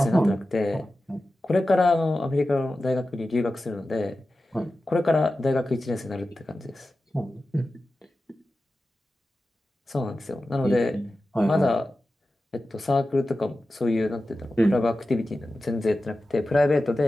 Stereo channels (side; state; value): both; normal; correlation 0.94